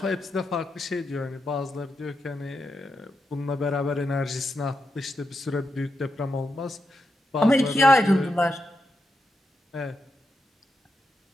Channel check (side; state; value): both; normal; correlation 0.85